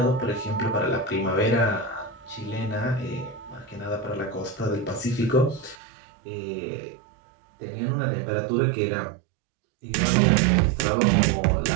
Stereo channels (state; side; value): drops out; left; at 5.8 s